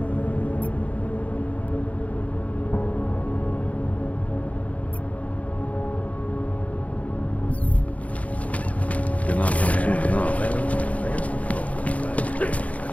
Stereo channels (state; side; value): late; right; 0.068 ms